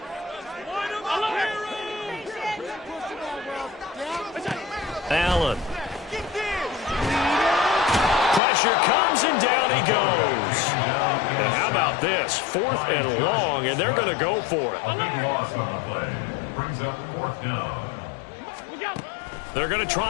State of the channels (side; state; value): right; drops out; at 8.4 s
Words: Allen. Pressure comes and down he goes. And how about this? 4th and long, and they're going to go for it. A big loss on the play. Brings up 4th down. They're going to